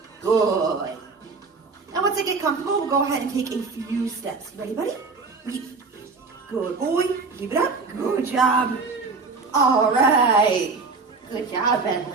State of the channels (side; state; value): left; quieter; 4.3 dB